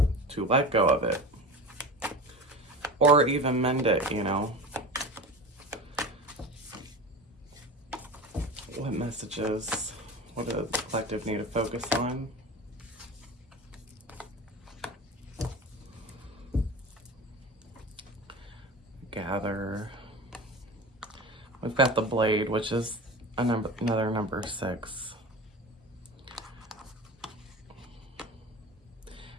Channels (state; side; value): normal; both; correlation 0.31